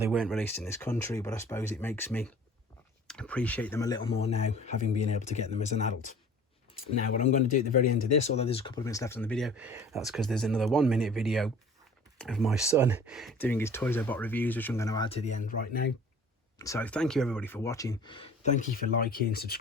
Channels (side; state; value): both; normal; correlation 0.47